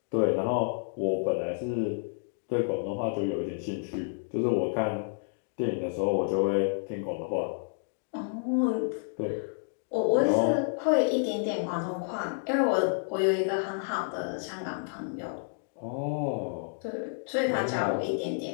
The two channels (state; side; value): silent; right; digital silence